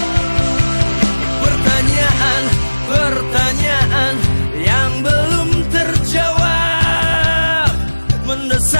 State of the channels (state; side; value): inverted; both; correlation -1.00